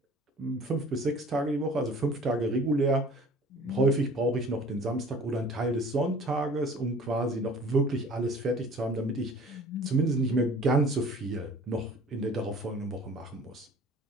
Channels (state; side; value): normal; both; correlation 0.48